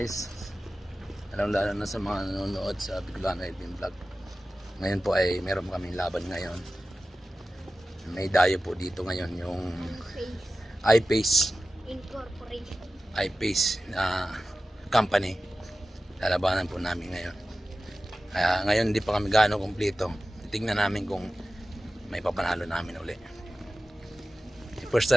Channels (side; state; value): both; normal; correlation 0.95